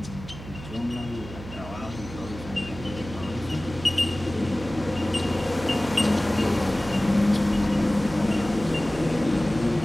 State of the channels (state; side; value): noise; right; hum, 13 dB below the sound